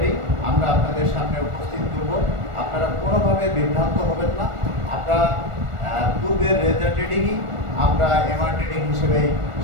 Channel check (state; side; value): late; left; 1.4 ms